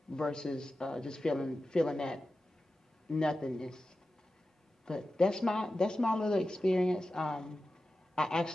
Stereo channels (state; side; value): normal; both; correlation 0.93